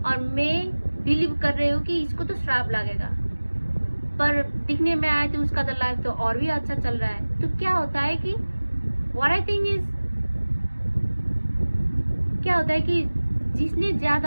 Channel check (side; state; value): both; inverted; correlation -1.00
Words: और मैं बिलीव कर रही हूँ कि इसको तो श्राप लगेगा, पर दिखने में आया तो उसका तो लाइफ तो और भी अच्छा चल रहा है. तो क्या होता है कि व्हाट आई थिंक इज, क्या होता है कि जिसने